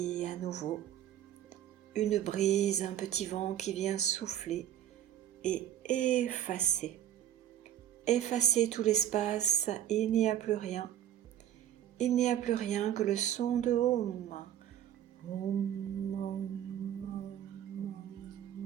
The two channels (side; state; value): left; quieter; 11.1 dB